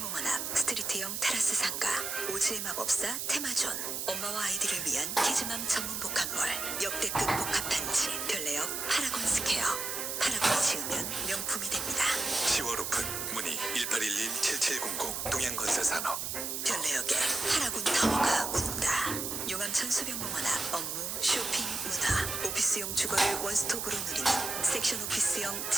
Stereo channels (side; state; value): right; noise; hiss, 3 dB below the sound